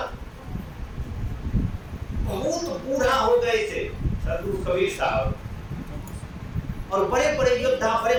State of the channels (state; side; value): identical; both; correlation 1.00